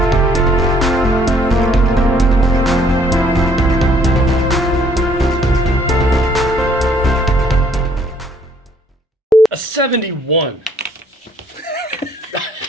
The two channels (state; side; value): normal; both; correlation 0.63